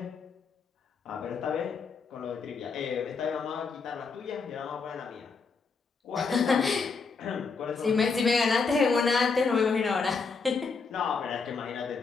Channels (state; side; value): quieter; right; 4.9 dB